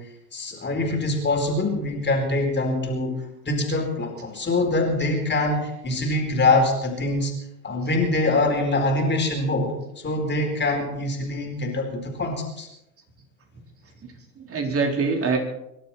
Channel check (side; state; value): both; normal; correlation 0.10